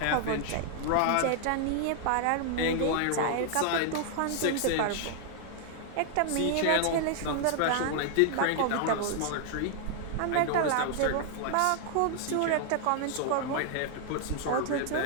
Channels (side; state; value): both; different; correlation 0.00